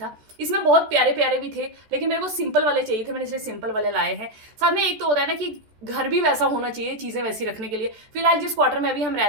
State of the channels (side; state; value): left; late; 14 ms